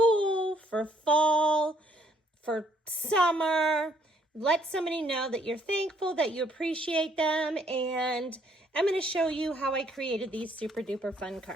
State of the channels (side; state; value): both; normal; correlation 0.66